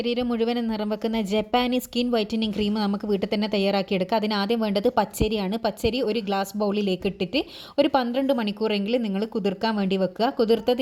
മുഴുവനും നിറം വെക്കുന്ന ജപ്പാനീസ് സ്കിൻ വൈറ്റനിങ് ക്രീം നമുക്ക് വീട്ടിൽ തന്നെ തയ്യാറാക്കിയെടുക്കാം. അതിനാദ്യം വേണ്ടത് പച്ചരിയാണ്. പച്ചരി ഒരു ഗ്ലാസ് ബൗളിലേക്ക് ഇട്ടിട്ട് ഒരു 12 മണിക്കൂറെങ്കിലും നിങ്ങൾ കുതിർക്കാൻ വേണ്ടി വെക്കുക.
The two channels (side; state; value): both; identical; correlation 1.00